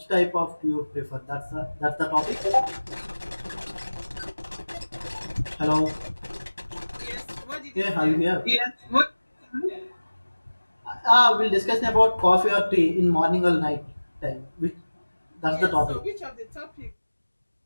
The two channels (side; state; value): both; inverted; correlation -1.00